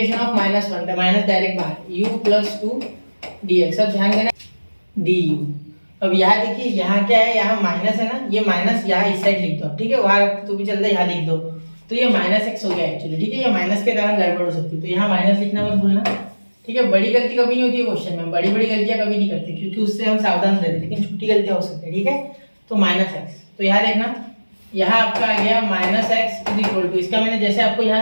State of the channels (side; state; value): both; inverted; correlation -1.00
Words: ऑफ -1 था, माइनस डायरेक्ट बाहर, u प्लस 2 dx। अब ध्यान देना du। अब यहाँ देखिए, यहाँ क्या है, यहाँ माइनस है ना, ये माइनस यहाँ इस साइड लिख दो। ठीक है, वहाँ तो भी चलता है, यहाँ लिख दो, तो ये -x हो गया एक्चुअली। ठीक है, ये माइनस के कारण गड़बड़ हो सकती है, तो यहाँ माइनस लिखना मत भूलना। ठीक है, बड़ी गलती कभी नहीं होती है क्वेश्चन में, बड़ी गलतियां कभी नहीं करते, क्योंकि उससे हम सावधान रहते, लेकिन छोटी गलतियां हो सकती है। ठीक है, तो -x, तो यहाँ देखना, यहाँ आपका आ गया -x इक्वल टू, इसका मैंने जैसे आपको